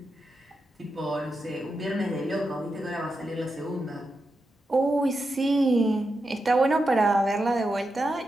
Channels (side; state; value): both; normal; correlation 0.87